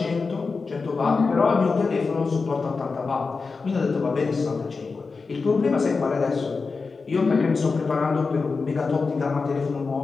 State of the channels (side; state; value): right; quieter; 4.4 dB